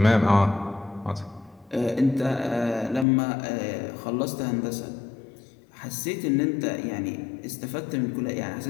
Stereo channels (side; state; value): right; drops out; at 3.1 s